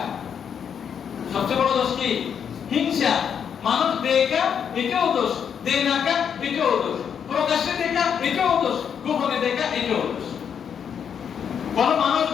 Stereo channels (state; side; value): quieter; right; 7.7 dB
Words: সবচেয়ে বড় দোষ কি? হিংসা। মানুষ দেখা এটাও দোষ, দে না কা এটাও দোষ, প্রকাশ্যে দেখা এটাও দোষ, গোপনে দেখা এটাও দোষ। কোন মানুষ